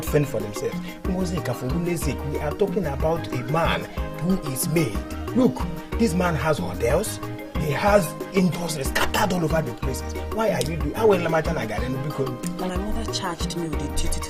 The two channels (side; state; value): both; identical; correlation 1.00